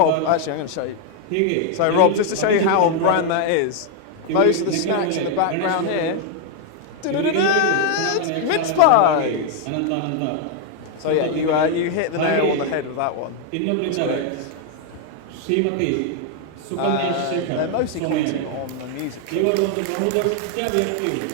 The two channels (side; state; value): both; different; correlation 0.00